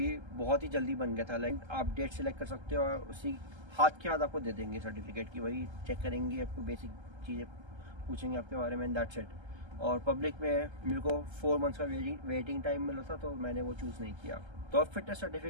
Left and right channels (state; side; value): late; left; 1.3 ms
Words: बहुत ही जल्दी बन गया था। लाइक आप डेट सेलेक्ट कर सकते हो और उसी हाथ के हाथ आपको दे देंगे सर्टिफिकेट की, वही चेक करेंगे, आपको बेसिक चीज़ें पूछेंगे आपके बारे में, दैट्स इट। और पब्लिक में मेरे को 4 मंथ्स का वेटिंग टाइम मिला था तो मैंने वो चूज़ नहीं किया। तो अब फिटनेस